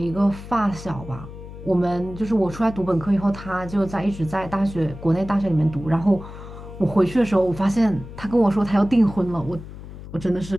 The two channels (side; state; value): left; noise; hum, 13 dB below the sound